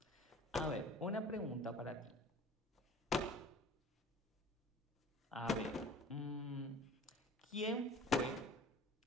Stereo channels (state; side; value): normal; both; correlation 0.44